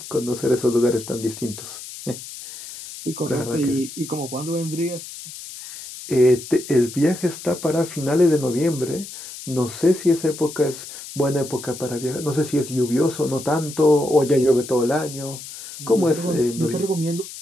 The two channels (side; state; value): left; noise; hiss, 13 dB below the sound